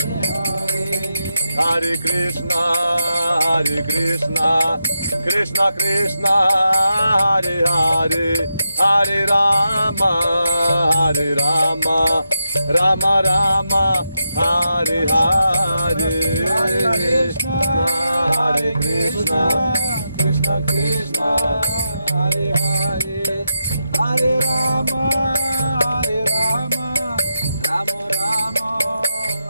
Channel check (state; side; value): inverted; both; correlation -0.86